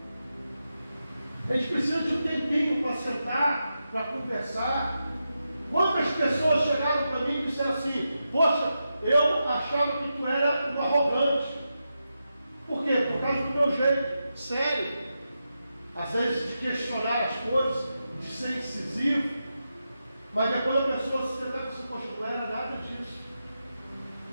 A gente precisa de um tempinho para sentar, para conversar. Quantas pessoas chegaram para mim e disseram assim: poxa, eu achava que tu era um arrogante. Por quê? Por causa do meu jeito sério, às vezes de questionar as coisas, de ser incisivo. Mas depois a pessoa se sentar e dizer assim: poxa, não era nada disso.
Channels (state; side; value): inverted; both; correlation -0.88